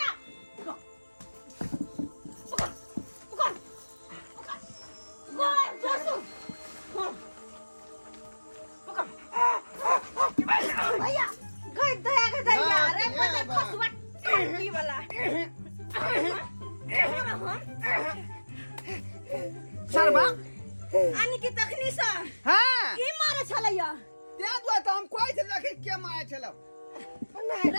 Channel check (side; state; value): both; inverted; correlation -1.00